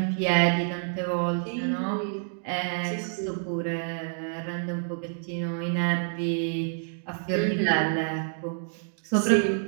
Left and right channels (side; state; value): left; silent; digital silence